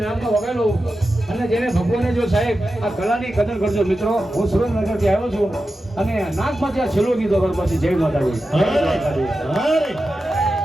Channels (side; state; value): both; normal; correlation 0.92